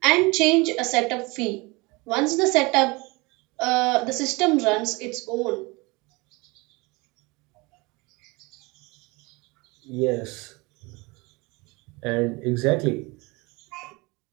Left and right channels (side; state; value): left; quieter; 25.4 dB